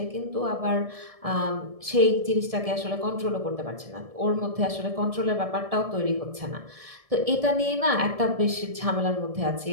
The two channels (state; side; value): late; left; 1.7 ms